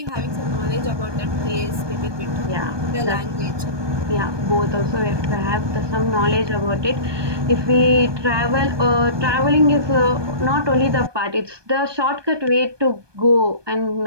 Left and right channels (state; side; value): late; left; 1.2 ms